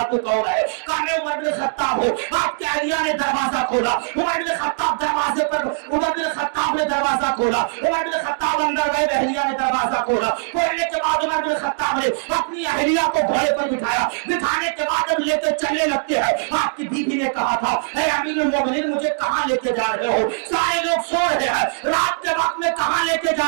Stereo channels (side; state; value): left; silent; digital silence